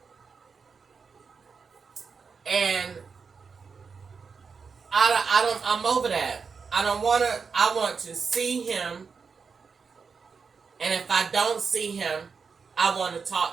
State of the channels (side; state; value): left; quieter; 5.4 dB